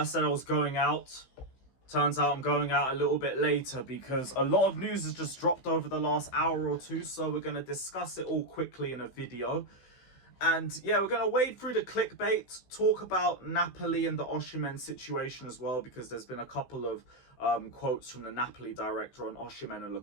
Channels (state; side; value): late; right; 16 ms